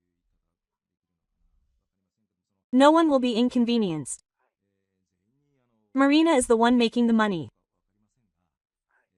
No one will be inconvenienced. Marina is the one making the money.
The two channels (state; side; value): identical; both; correlation 1.00